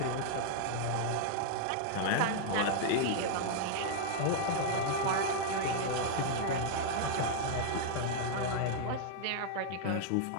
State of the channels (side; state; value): both; different; correlation -0.01